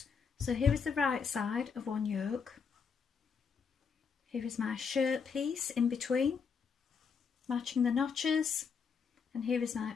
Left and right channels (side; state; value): right; quieter; 6.0 dB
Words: So here is the right side of one yoke. Here is my shirt piece in between, matching the notches. And here is